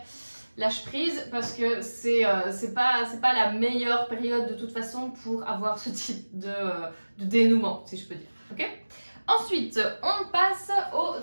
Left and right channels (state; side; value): inverted; both; correlation -1.00